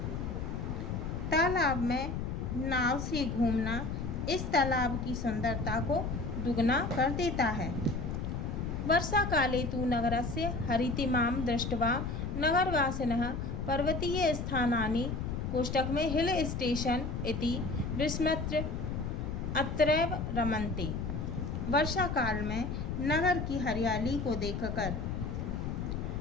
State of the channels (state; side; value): noise; left; rumble, 3 dB below the sound